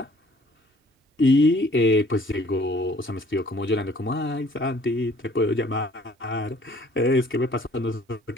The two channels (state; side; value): normal; both; correlation 0.56